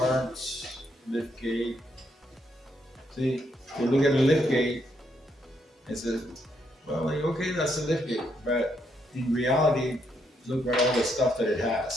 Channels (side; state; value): both; normal; correlation 0.76